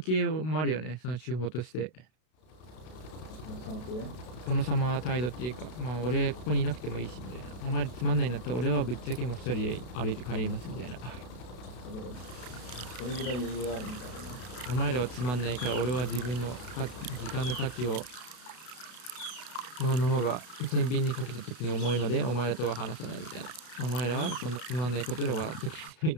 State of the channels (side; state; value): right; late; 32 ms